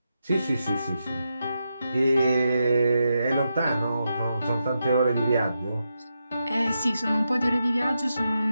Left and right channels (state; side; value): inverted; both; correlation -0.86